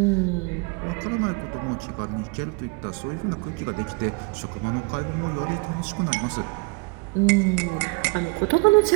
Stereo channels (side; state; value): left; quieter; 28.6 dB